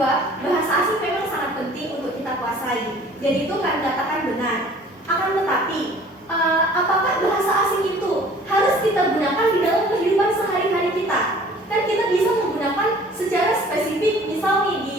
bahasa asing memang sangat penting untuk kita kuasai, dan itu kan dikatakan benar. Akan tetapi, apakah bahasa asing itu harus kita gunakan di dalam kehidupan sehari-hari kita? Kan kita bisa menggunakan secara spesifik, misal nih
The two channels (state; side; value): normal; both; correlation 0.51